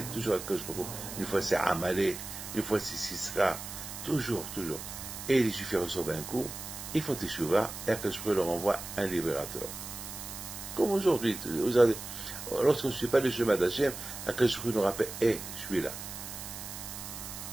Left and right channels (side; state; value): right; noise; hiss, 9 dB below the sound